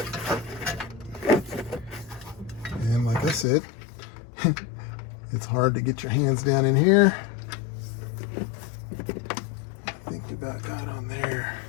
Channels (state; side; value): drops out; right; at 3.5 s